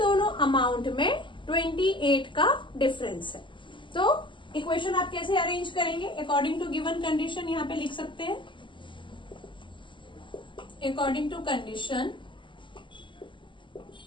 अमाउंट में 28 का डिफरेंस है। तो इक्वेशन आप कैसे अरेंज करेंगे? अकॉर्डिंग टू गिवन कंडीशन यहाँ पे लिख सकते हैं, according to condition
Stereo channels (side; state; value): right; late; 0.24 ms